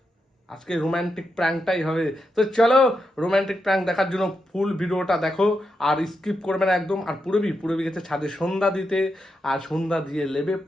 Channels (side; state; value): both; normal; correlation 0.85